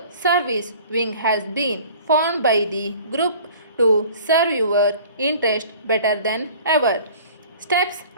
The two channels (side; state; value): both; inverted; correlation -0.46